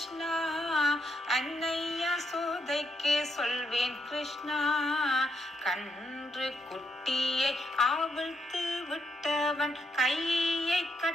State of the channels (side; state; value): both; normal; correlation 0.79